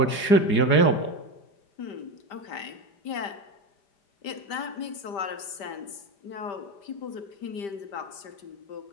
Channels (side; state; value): right; late; 5.1 ms